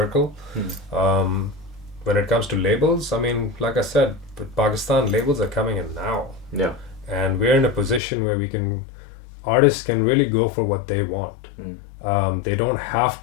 When it comes to labels, I mean, like I said, with Pakistan, labels are coming in now. Yeah. And we're in a position where artists can really go for what they want. They don't have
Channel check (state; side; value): drops out; right; at 8.0 s